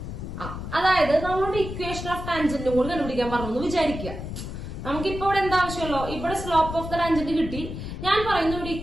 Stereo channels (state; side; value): noise; left; rumble, 7 dB below the sound